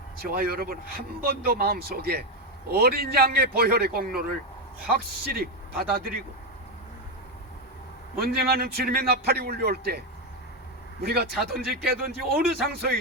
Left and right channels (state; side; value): normal; both; correlation 0.09